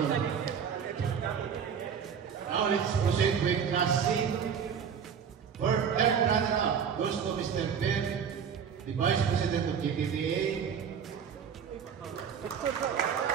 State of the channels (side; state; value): left; quieter; 7.3 dB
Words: Now let's proceed with Class C. For third runner-up goes to Mr. Ben, the Vice President of GTDA.